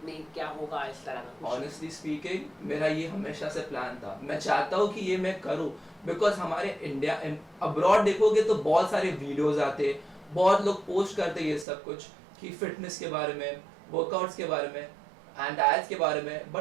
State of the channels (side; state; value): left; drops out; at 11.7 s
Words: क्या होगा, इस तरह का? ऑनेस्टली स्पीकिंग, मेरा ये हमेशा से प्लान था। मैं चाहता हूँ कि ये मैं करूँ, बिकॉज हमारे इंडिया अब्रॉड देखोगे तो बहुत सारे वीडियोज आते, बहुत लोग पोस्ट करते ये सब कुछ कि फिटनेस के बारे में, वर्कआउट्स के बारे में एंड डाइट्स के बारे में,